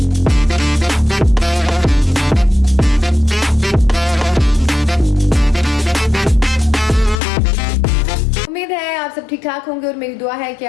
उम्मीद है आप सब ठीक ठाक होंगे और मेरी दुआ है कि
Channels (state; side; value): drops out; right; at 7.2 s